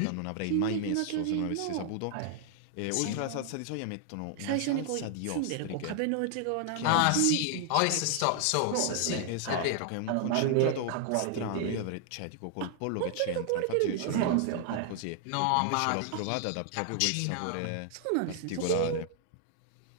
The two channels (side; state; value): both; different; correlation 0.00